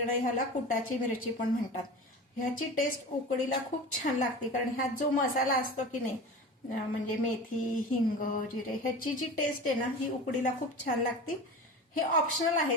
ह्याला कुटाची मिरची पण म्हणतात. ह्याची टेस्ट उकडीला खूप छान लागते कारण ह्यात जो मसाला असतो की नाही म्हणजे मेथी, हिंग, जिरे ह्याची जी टेस्ट आहे ना ही उकडीला खूप छान लागते. हे ऑप्शनल आहे,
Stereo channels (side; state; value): both; normal; correlation 0.33